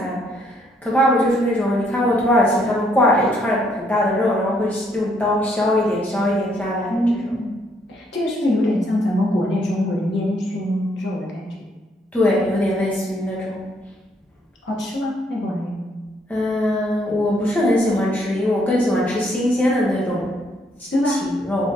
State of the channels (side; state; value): both; normal; correlation 0.70